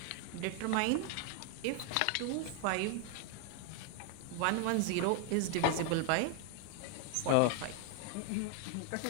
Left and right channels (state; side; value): different; both; correlation 0.01